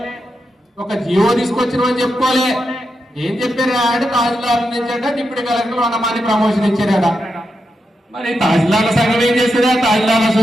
ఒక జియో తీసుకొచ్చినామని చెప్పుకోలే. ఏం చెప్పారా అంటే తహసీల్దార్ నుంచి అంటే డిప్యూటీ కలెక్టర్ 100 మంది ప్రమోషన్ ఇచ్చారట. మరి తహసీల్దార్ల సంఘం ఏం చేస్తుందా? తహసీల్దార్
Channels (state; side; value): normal; both; correlation 0.86